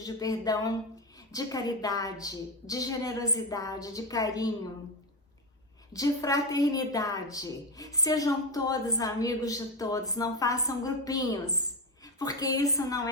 de perdão, de caridade, de generosidade, de carinho, de fraternidade. Sejam todos amigos de todos, não façam grupinhos, porque isso não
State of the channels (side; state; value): both; normal; correlation 0.13